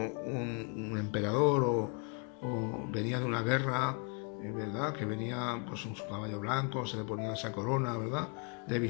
emperador o venía de una guerra, ¿verdad? Que venía pues en su caballo blanco, se le ponía esa corona, ¿verdad? De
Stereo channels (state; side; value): quieter; right; 35.0 dB